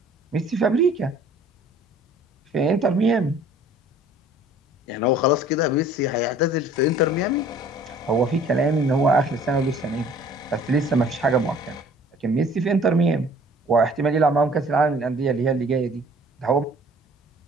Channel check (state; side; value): normal; both; correlation 0.52